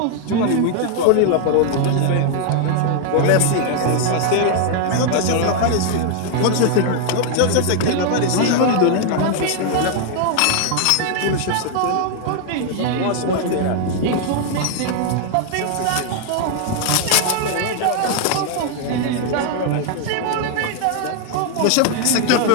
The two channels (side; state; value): both; different; correlation 0.00